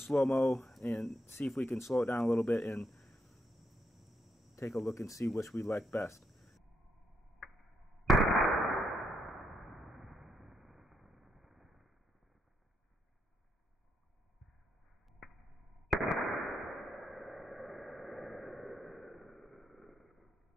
and see if we can slow it down a little bit and take a look and see which we like best.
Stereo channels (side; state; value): both; normal; correlation 0.79